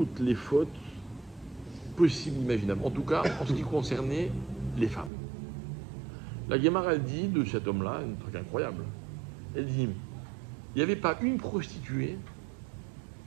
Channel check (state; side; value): drops out; left; at 5.1 s